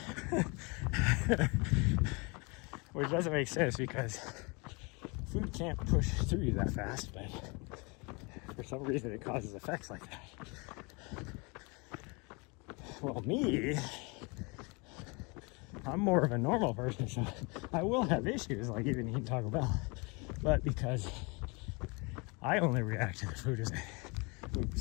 Which doesn't make sense, because food can't push through you that fast, but for some reason it causes effects like that. Well, me, I'm more of a normal person, so I will have issues like even eating Taco Bell, but because I only react to the food as it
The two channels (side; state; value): right; quieter; 29.6 dB